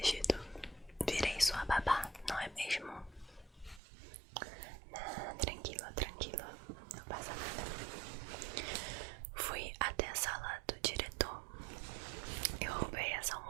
Virei sua babá, não é mesmo? Tranquilo, não passa nada. Fui até a sala do diretor. Eu roubei essa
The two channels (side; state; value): left; drops out; at 3.8 s